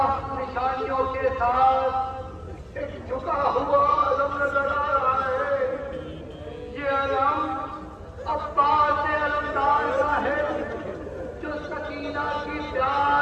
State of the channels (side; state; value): both; identical; correlation 1.00